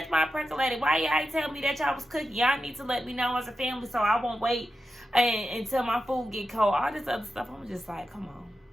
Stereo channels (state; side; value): normal; both; correlation 0.90